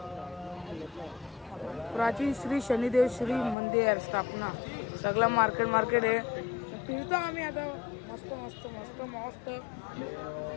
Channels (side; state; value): right; drops out; at 3.6 s